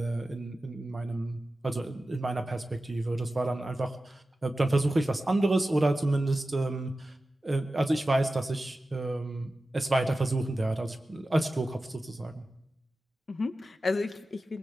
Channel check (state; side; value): normal; both; correlation 0.94